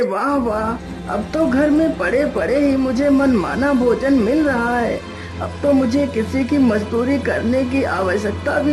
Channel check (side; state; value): both; identical; correlation 1.00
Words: वाह वाह, अब तो घर में पड़े पड़े ही मुझे मनमाना भोजन मिल रहा है। अब तो मुझे किसी की मजदूरी करने की आवश्यकता